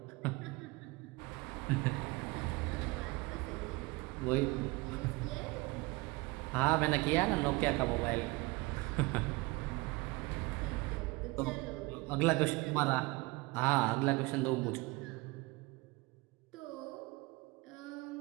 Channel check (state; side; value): quieter; left; 23.8 dB